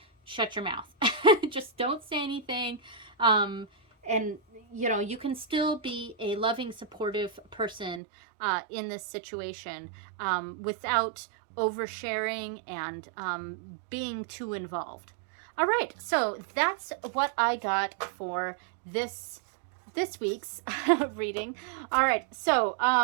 shut your mouth. Just don't say anything. And, you can still be a loving, supportive person in this situation without oversharing and being too involved. All right, so that's what I got for this week's reading. All right, so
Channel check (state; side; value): drops out; left; at 8.0 s